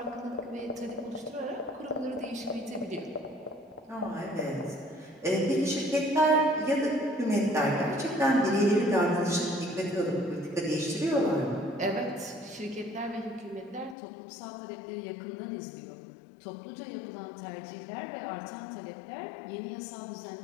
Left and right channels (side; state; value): right; drops out; at 14.0 s